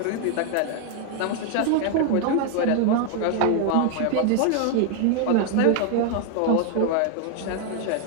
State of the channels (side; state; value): both; different; correlation 0.00